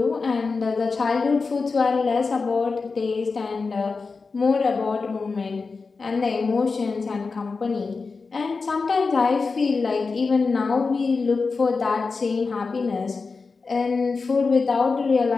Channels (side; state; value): right; quieter; 4.4 dB